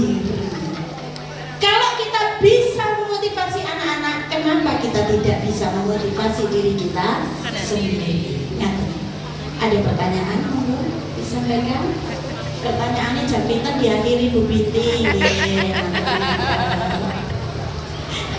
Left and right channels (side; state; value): both; identical; correlation 1.00